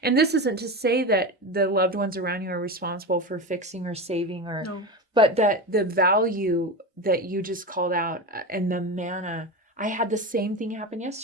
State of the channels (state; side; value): normal; both; correlation 0.22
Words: And this isn't to say that the loved ones around you are responsible for fixing or saving, or no. but that the value that you just called out and the manna. I had the same thing happen